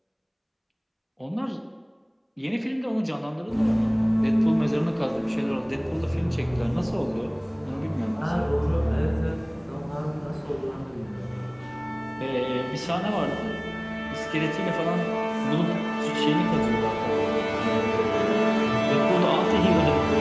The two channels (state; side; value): identical; both; correlation 1.00